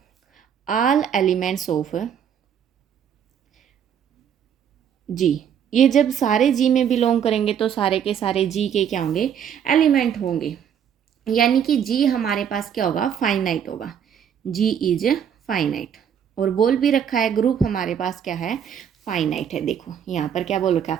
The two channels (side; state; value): left; quieter; 8.5 dB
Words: all elements of G. ये जब सारे जी में बिलोंग करेंगे तो सारे के सारे जी के क्या होंगे, एलिमेंट होंगे, यानी कि जी हमारे पास क्या होगा, फाइनाइट होगा, जी इज फाइनाइट। और बोल भी रखा है ग्रुप हमारे पास क्या है, फाइनाइट है। देखो यहाँ पर क्या बोल रखा है,